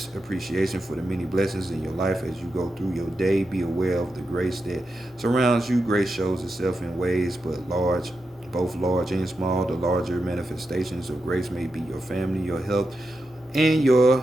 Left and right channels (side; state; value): both; normal; correlation 0.88